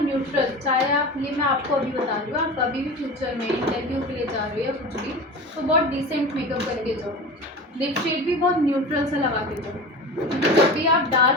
चाहे आप, ये मैं आपको अभी बता रही हूँ, आप कभी भी फ्यूचर में इंटरव्यू के लिए जा रहे हो या कुछ भी, तो बहुत डिसेंट मेकअप करके जाओ, लिप शेड भी बहुत न्यूट्रल सा लगा के जाओ। जब भी आप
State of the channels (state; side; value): normal; both; correlation 0.31